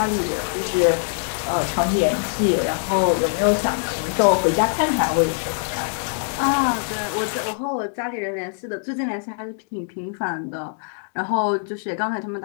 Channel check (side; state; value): right; silent; digital silence